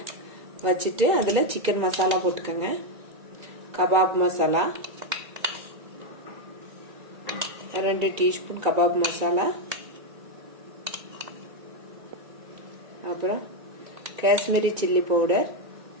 வச்சுட்டு அதுல சிக்கன் மசாலா போட்டுக்கோங்க. Kebab masala 2 teaspoon kebab masala, அப்புறம் Kashmiri chilli powder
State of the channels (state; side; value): late; left; 2.3 ms